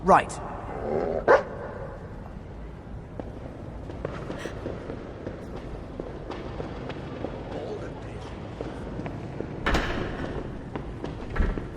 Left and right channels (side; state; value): both; identical; correlation 1.00